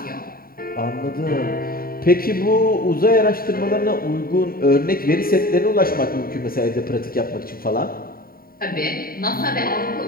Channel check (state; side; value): late; right; 0.43 ms